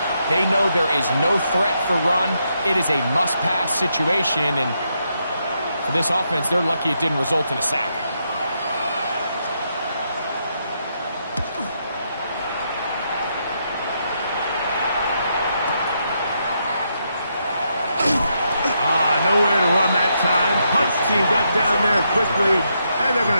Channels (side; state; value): both; inverted; correlation -0.79